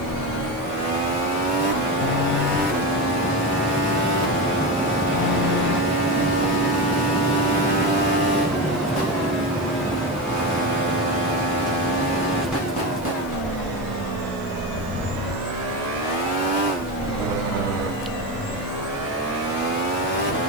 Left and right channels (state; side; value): noise; right; hiss, 23 dB below the sound